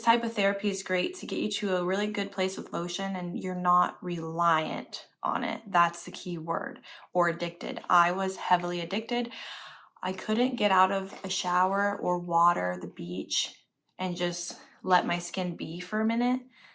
type of therapy is great to get you to a really good place with lotion and you're not reliant on it. That's the key word. Or addicted. I was heavily addicted. I couldn't get out of a shower or water, the beach, and just let my skin be for a minute.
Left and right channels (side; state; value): both; identical; correlation 1.00